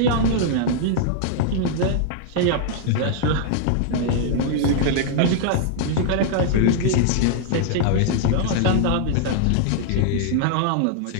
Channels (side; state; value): both; different; correlation -0.01